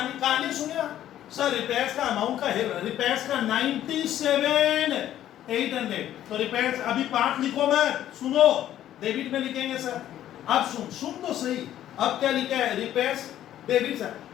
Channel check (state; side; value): quieter; right; 12.0 dB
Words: कहानी सुनिए सर, रिपेयर्स का अमाउंट का है, रिपेयर्स का 97,800, तो रिपेयर्स अभी पार्ट लिखो मत, सुनो डेबिट में लिखेंगे सर। अब सुन तो सही, अब क्या लिखा है? रिपेयर्स डेबिट सर,